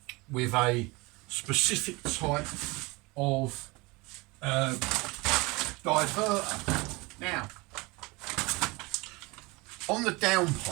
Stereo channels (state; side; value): quieter; left; 24.6 dB